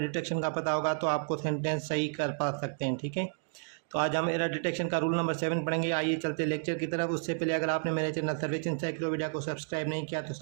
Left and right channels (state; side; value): silent; left; digital silence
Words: का पता होगा तो आपको सेंटेंस सही कर पा सकते हैं। ठीक है, तो आज हम एरर डिटेक्शन का रूल नंबर 7 पढ़ेंगे। आइए चलते लेक्चर की तरफ। उससे पहले अगर आपने मेरे चैनल सर्वेज इंसाइक्लोपीडिया को सब्सक्राइब नहीं किया तो